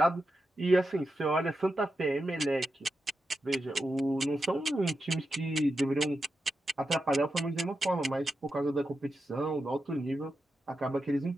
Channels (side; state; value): both; normal; correlation 0.88